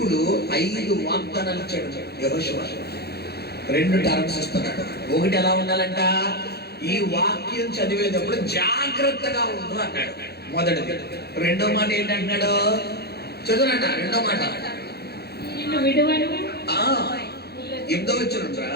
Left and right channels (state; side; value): late; right; 0.47 ms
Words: 5 వాగ్దానాలు ఇచ్చాడు యెహోషువ. 2 టర్మ్స్ ఇస్తున్నాడు. ఒకటి ఎలా ఉండాలంట? ఈ వాక్యం చదివేటప్పుడు జాగ్రత్తగా ఉండు అన్నాడు మొదటిది. రెండో మాట ఏంటంటున్నాడు? చదువునంట. రెండో మాట 8వ వచనంరా.